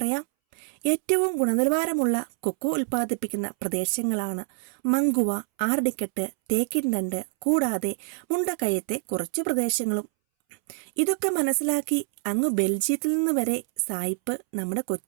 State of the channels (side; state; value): left; silent; 61 dB below the other